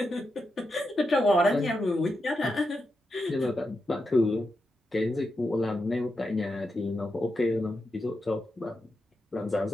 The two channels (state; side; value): normal; both; correlation 0.87